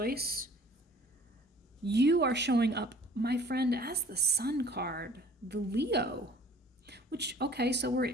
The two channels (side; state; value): both; normal; correlation 0.51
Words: You are showing up my friend, as the Sun card, the Leo, which, okay, so